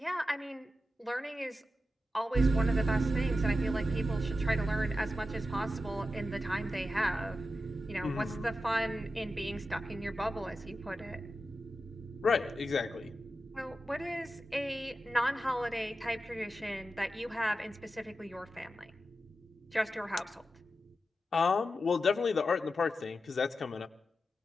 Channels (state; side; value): normal; both; correlation 0.90